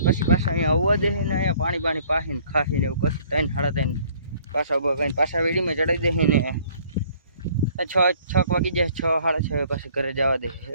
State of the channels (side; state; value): both; inverted; correlation -0.57